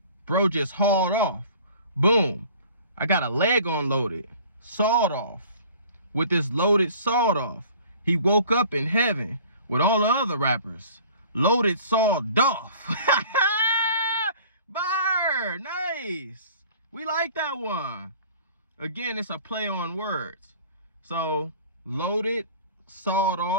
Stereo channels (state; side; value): inverted; both; correlation -0.47